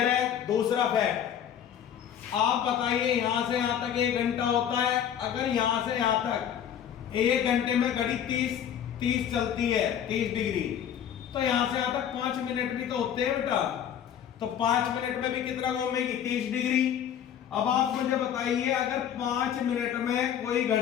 है? दूसरा फैक्ट, आप बताइए यहां से यहां तक 1 घंटा होता है। अगर यहां से यहां तक 1 घंटे में घड़ी 30 चलती है, 30 डिग्री, तो यहां से यहां तक 5 मिनट भी तो होते हैं बेटा। तो 5 मिनट में भी कितना घूमेगी? 30 डिग्री। अब आप मुझे बताइए अगर 5 मिनट में कोई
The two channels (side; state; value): right; quieter; 9.3 dB